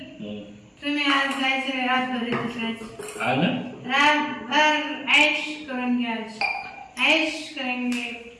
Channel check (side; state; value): both; identical; correlation 1.00